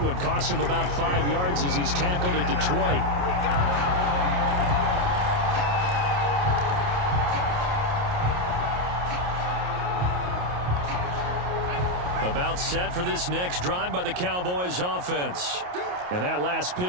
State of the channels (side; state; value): left; late; 28 ms